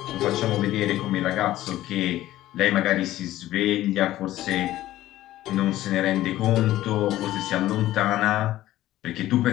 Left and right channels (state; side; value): quieter; right; 14.8 dB